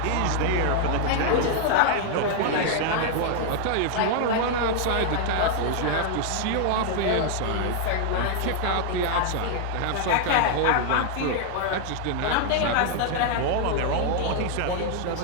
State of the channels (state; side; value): different; both; correlation 0.00